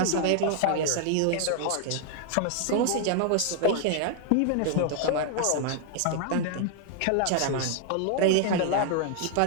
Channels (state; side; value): different; both; correlation 0.00